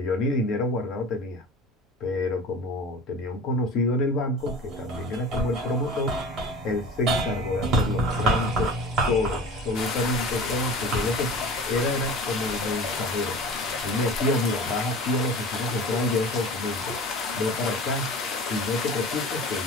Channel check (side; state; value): both; normal; correlation 0.37